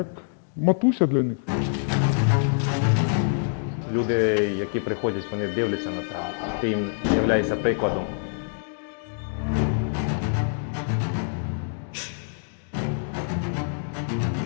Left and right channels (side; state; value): right; silent; digital silence